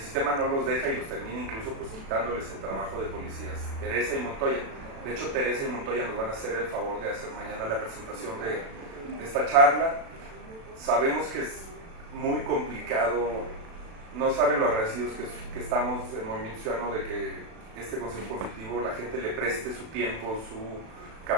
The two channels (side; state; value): left; late; 36 ms